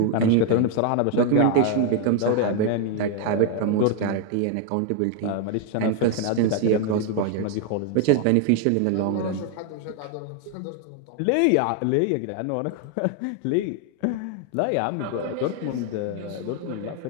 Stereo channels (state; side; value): different; both; correlation 0.00